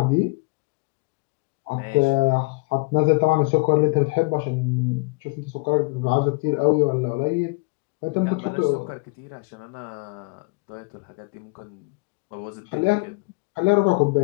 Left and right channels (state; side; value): quieter; right; 28.6 dB